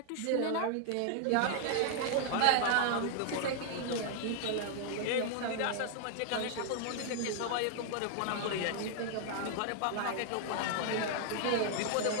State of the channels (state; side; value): different; both; correlation 0.00